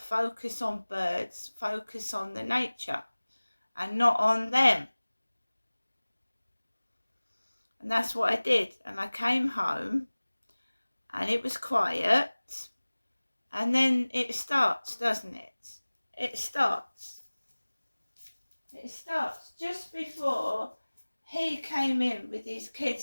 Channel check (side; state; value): both; inverted; correlation -1.00